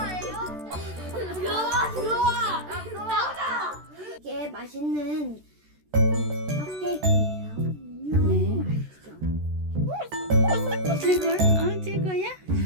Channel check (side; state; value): left; late; 13 ms